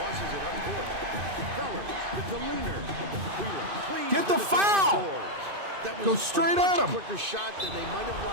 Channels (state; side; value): late; left; 2.5 ms